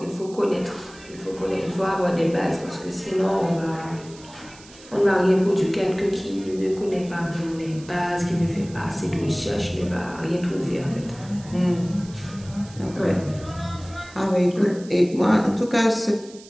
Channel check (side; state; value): right; noise; hiss, 21 dB below the sound